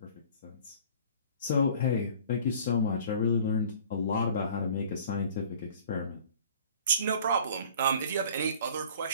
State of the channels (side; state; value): both; inverted; correlation -0.48